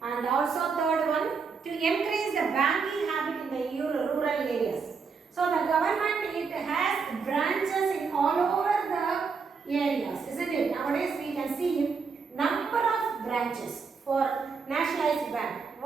And also third one, to increase the banking habit in the rural areas. So the government, it has branches in all over the areas, isn't it? Nowadays we can see number of branches for nationalized bank.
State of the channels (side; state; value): left; quieter; 5.3 dB